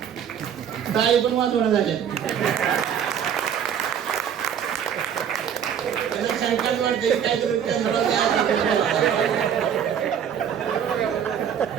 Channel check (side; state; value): left; quieter; 8.5 dB